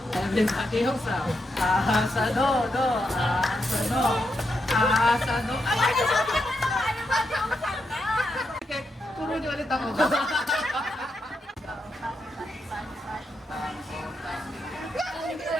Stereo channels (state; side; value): normal; both; correlation 0.83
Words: everybody hosa. Sa do. Sa do. Sa do. Okay, turo niyo ulit ako.